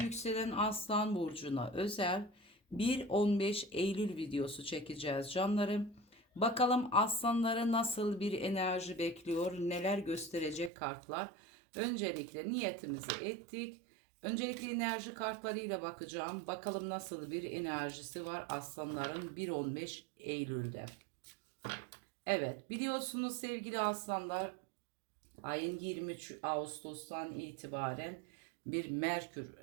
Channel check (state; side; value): drops out; left; at 10.7 s